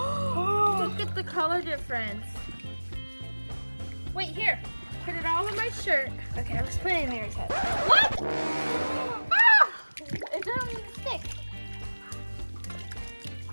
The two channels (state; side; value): inverted; both; correlation -1.00